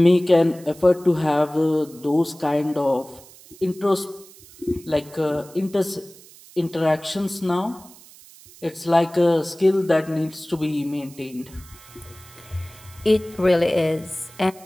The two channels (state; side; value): noise; right; hiss, 22 dB below the sound